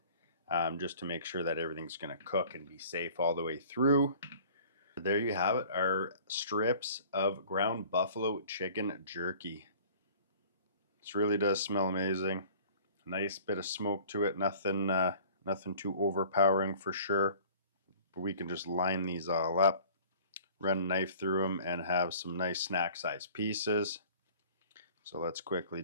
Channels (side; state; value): both; inverted; correlation -0.48